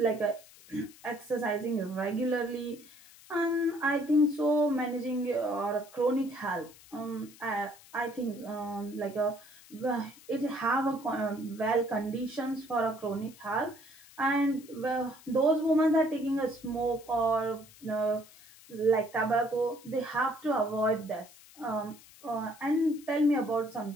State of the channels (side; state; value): left; noise; hiss, 22 dB below the sound